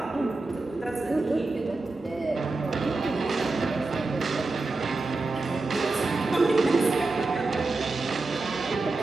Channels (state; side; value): quieter; left; 3.4 dB